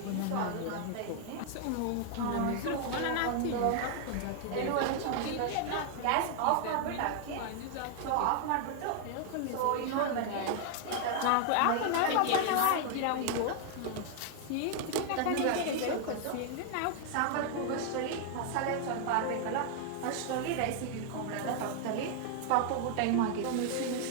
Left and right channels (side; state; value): both; different; correlation 0.00